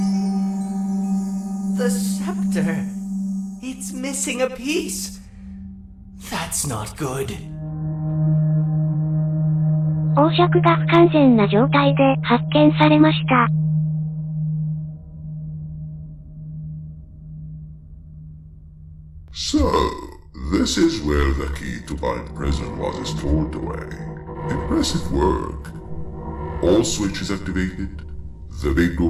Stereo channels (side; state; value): both; identical; correlation 1.00